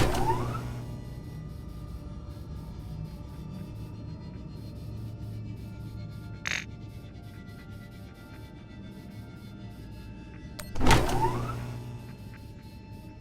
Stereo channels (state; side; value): identical; both; correlation 1.00